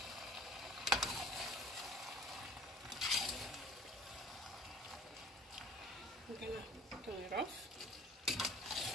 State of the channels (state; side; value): normal; both; correlation 0.48